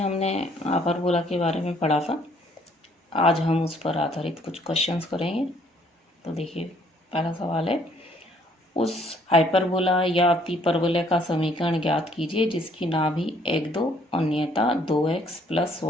हाइपरबोला के बारे में पढ़ा था। आज हम उस पर आधारित कुछ क्वेश्चंस करेंगे। तो देखिए, पहला सवाल है, उस हाइपरबोला या अतिपरवलय का समीकरण ज्ञात कीजिए जिसकी नाभि 1, 2 और नियता 2x प्लस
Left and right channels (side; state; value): both; normal; correlation 0.63